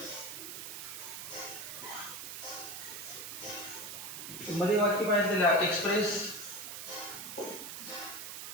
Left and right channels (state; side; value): noise; right; hiss, 8 dB below the sound